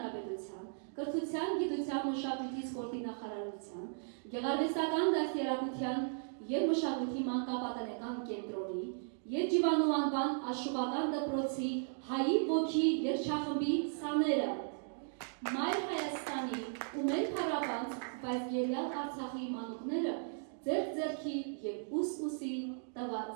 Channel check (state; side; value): silent; left; digital silence